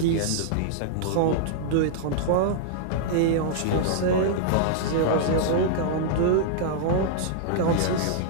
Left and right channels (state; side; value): different; both; correlation -0.01